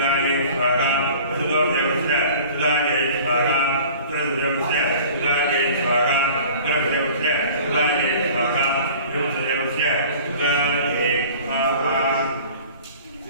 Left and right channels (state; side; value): inverted; both; correlation -0.45